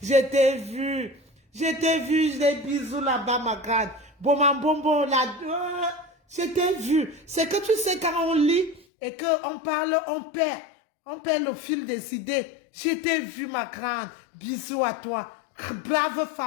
je t'ai vu, des bisous là-bas, ma grande, bonbon, là, je t'ai vu. C'est que tu sais, quand on lit et qu'on parle, on perd le fil des idées. Je t'ai vu, ma grande, bisous à toi, brave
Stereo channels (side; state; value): right; drops out; at 8.8 s